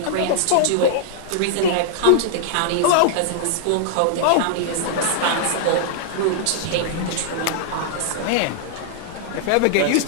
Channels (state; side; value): different; both; correlation -0.01